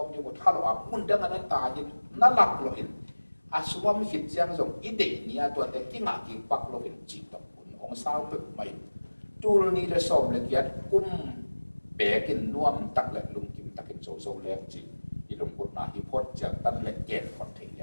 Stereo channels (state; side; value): inverted; both; correlation -1.00